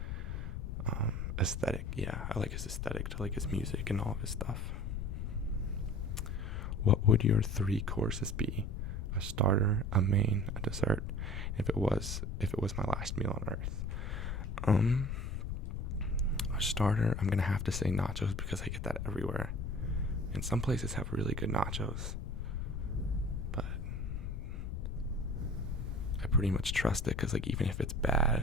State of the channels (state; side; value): noise; left; rumble, 3 dB below the sound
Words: Aesthetic. Yeah, I like his aesthetic to like his music and all of his stuff. What would your 3 courses be? A starter, a main, a dessert. If it was my last meal on earth. A starter, I'm gonna have to say nachos because I get that everywhere. And some places have really good nachos. But I pretty much trust it because, like, even if it's